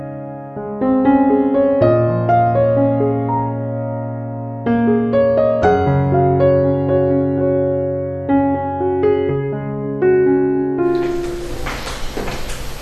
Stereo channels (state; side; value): identical; both; correlation 1.00